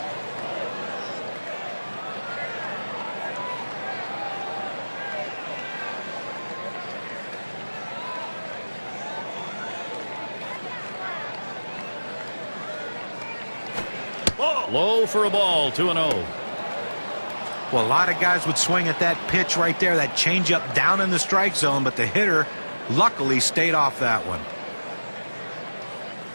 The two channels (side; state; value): both; inverted; correlation -1.00